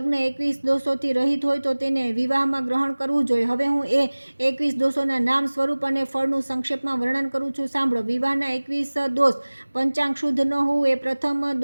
21 દોષોથી રહિત હોય તો તેને વિવાહમાં ગ્રહણ કરવું જોઈએ. હવે હું એ 21 દોષોના નામ, સ્વરૂપ અને ફળનું સંક્ષેપમાં વર્ણન કરું છું, સાંભળો. વિવાહના 21 દોષ. પંચાંગ શુદ્ધ ન હોવું એ પ્રથમ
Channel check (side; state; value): both; inverted; correlation -1.00